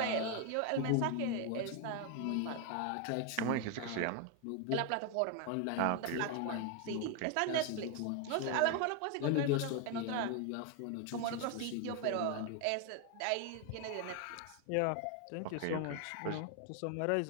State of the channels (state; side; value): different; both; correlation 0.01